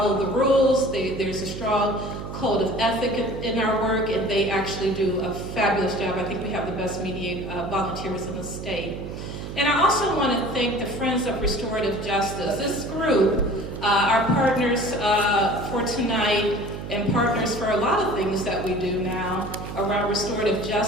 the rules. There's a strong code of ethic in our work, and they actually do a fabulous job. I think we have the best volunteers in the state. And I also want to thank the Friends of Restorative Justice. This group, our partners for tonight and partners for a lot of things that we do now around restorative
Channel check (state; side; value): noise; right; hum, 8 dB below the sound